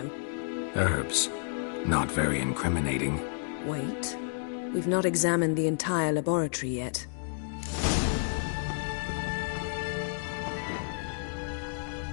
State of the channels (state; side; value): silent; right; digital silence